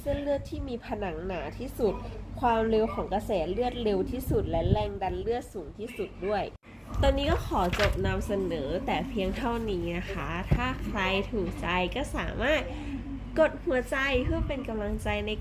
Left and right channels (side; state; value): both; identical; correlation 1.00